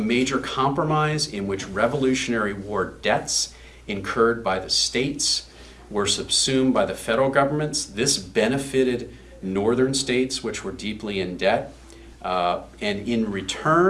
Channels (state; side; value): identical; both; correlation 1.00